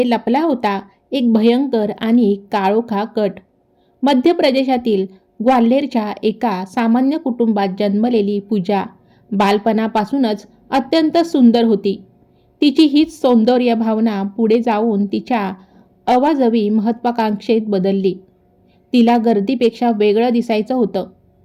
लपला होता एक भयंकर आणि काळोखा कट. मध्य प्रदेशातील ग्वाल्हेरच्या एका सामान्य कुटुंबात जन्मलेली पूजा बालपणापासूनच अत्यंत सुंदर होती. तिची हीच सौंदर्य भावना पुढे जाऊन तिच्या अवाजवी महत्त्वाकांक्षेत बदलली. तिला गर्दीपेक्षा वेगळं दिसायचं होतं.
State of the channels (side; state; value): both; identical; correlation 1.00